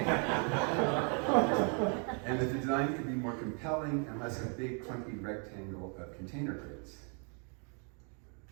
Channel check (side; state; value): left; quieter; 39.2 dB